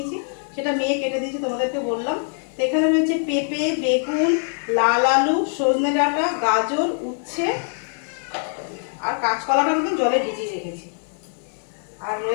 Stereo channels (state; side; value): silent; right; 63 dB below the other